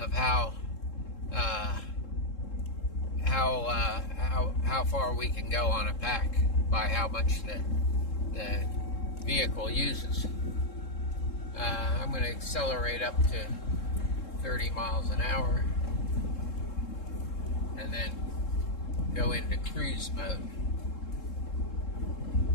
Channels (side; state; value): right; late; 3.7 ms